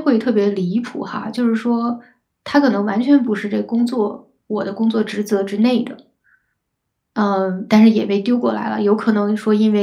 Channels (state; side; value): identical; both; correlation 1.00